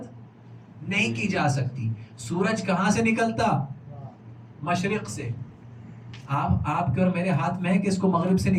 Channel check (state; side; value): identical; both; correlation 1.00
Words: نہیں کی جا سکتی. سورج کہاں سے نکلتا؟ مشرق سے. آپ کے اور میرے ہاتھ میں ہے کہ اس کو مغرب سے